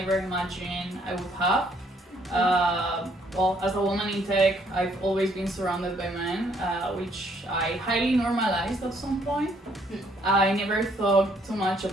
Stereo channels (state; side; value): normal; both; correlation 0.67